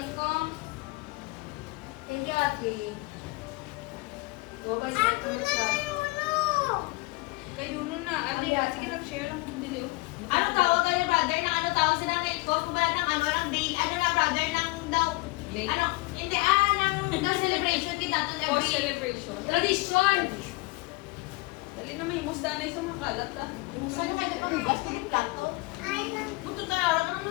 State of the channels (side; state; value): right; quieter; 24.2 dB